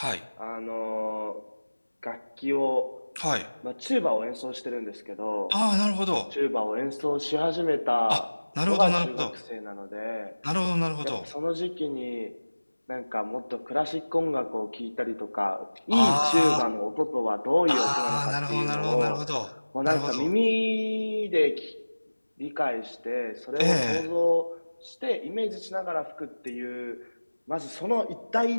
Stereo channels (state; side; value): inverted; both; correlation -1.00